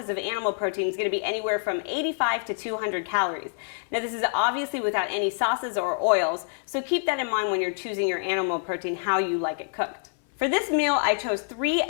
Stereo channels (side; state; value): right; silent; 61 dB below the other